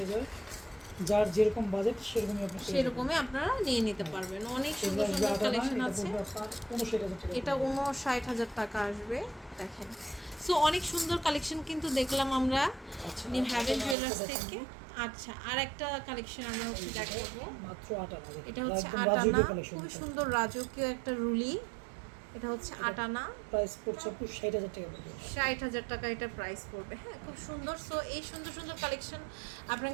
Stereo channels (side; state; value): left; drops out; at 14.0 s